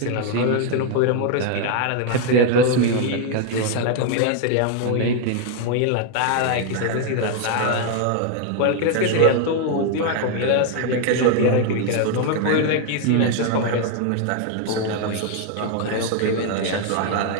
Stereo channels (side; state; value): both; different; correlation 0.01